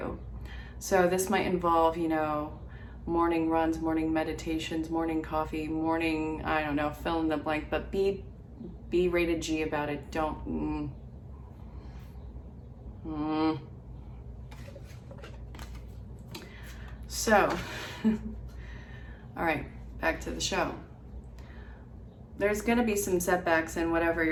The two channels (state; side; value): identical; both; correlation 1.00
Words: So this might involve, you know, morning runs, morning meditations, morning coffee, morning, I don't know, fill in the blank, but be rated G about it. Don't, So, all right, back to the show. There's going to be some setbacks in whatever